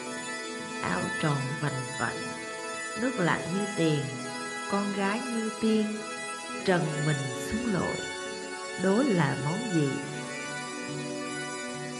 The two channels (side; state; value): both; identical; correlation 1.00